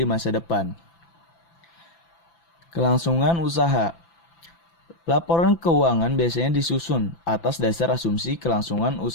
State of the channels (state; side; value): late; right; 5.9 ms